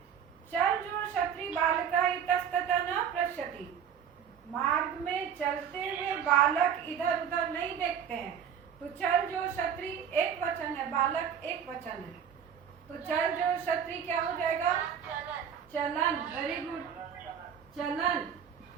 चल जो क्षत्रि बालका इतस्ततः न पश्यति। मार्ग में चलते हुए बालक इधर उधर नहीं देखते हैं, तो चल जो क्षत्रि एक वचन है, बालक एक वचन है, तो चल जो क्षत्रि क्या हो जाएगा? चलन। वेरी गुड, चलन,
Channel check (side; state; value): left; quieter; 8.1 dB